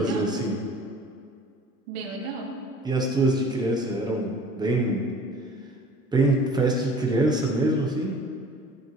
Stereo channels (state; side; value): normal; both; correlation 0.48